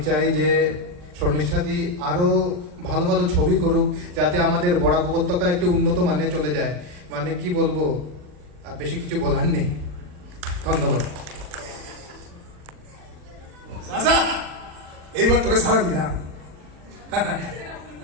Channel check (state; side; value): late; left; 40 ms